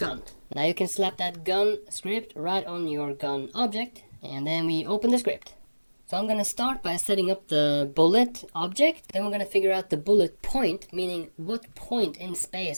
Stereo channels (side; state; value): both; inverted; correlation -1.00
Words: Now you can slap that gun script right on your gun object. And then we open the script. So I'm going to start by setting up the bullet object. Then we're going to figure out the bullet point, meaning what point in